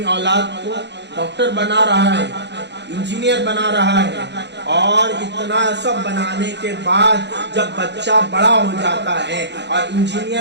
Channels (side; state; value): left; late; 0.50 ms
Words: اولاد کو ڈاکٹر بنا رہا ہے، انجینئر بنا رہا ہے، اور اتنا سب بنانے کے بعد جب بچہ بڑا ہو جاتا ہے اور